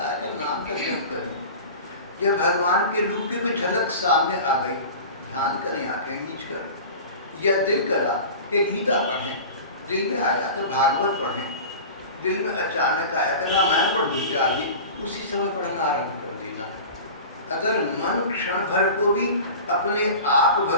है कि नाम का जप करें, या भगवान के रूप की कोई झलक सामने आ गई, ध्यान करें आंखें मीच कर, या दिल करा कि गीता पढ़ें, दिल में आया कि भागवत पढ़ें, दिल में अचानक आया कि रामायण पढ़नी चाहिए, उसी समय पढ़ना आरंभ कर देना। अगर मन क्षण भर को भी अपने आप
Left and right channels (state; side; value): inverted; both; correlation -0.35